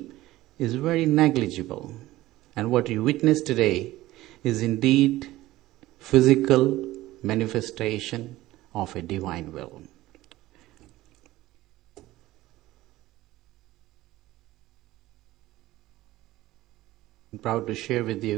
is very negligible. And what you witness today is indeed physical manifestation of a divine will. I'm proud to share with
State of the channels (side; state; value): left; quieter; 16.8 dB